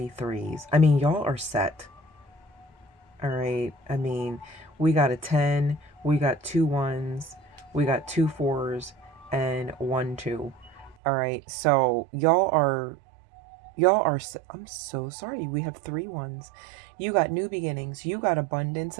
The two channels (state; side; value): drops out; left; at 11.0 s